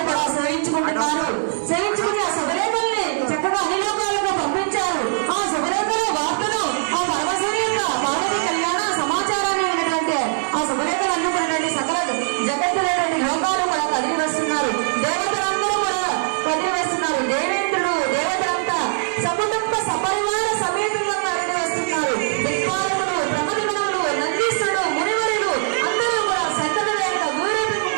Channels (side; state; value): left; silent; digital silence